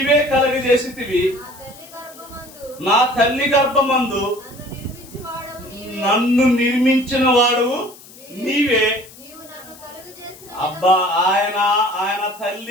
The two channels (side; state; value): left; noise; hiss, 20 dB below the sound